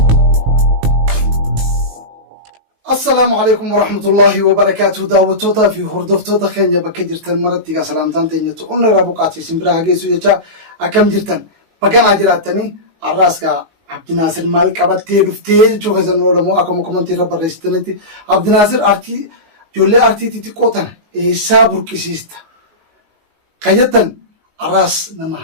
السلام عليكم ورحمة الله وبركاته. دعوتوتا في هردفتوتا خينيا بكجرتن مرتيغا سلامتان تينيتو أمنا رابوقاتي سنبراها جيسو يجا أكم جرتن بكان عجراتني الراسكا عبد الناصر مالك أبتي رفتي جو غزن ولمو أكم كومنتي رب الرئيستنتي عبد الناصر أرتي جولي أرتي تيتي قوتن إيسا بركسيستا قيدتن الراس نما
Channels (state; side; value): late; left; 19 ms